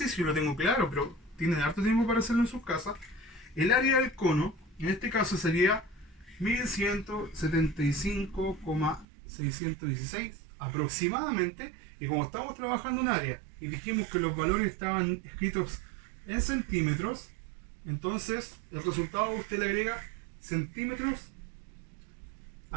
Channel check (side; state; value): left; drops out; at 9.1 s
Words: lo tengo claro, pero tienen harto tiempo para hacerlo en sus casas. El área del cono, en este caso, sería 1175,616 aproximadamente. Y como estamos trabajando en área y dijimos que los valores estaban escritos en centímetros, entonces el resultado usted le agrega centímetros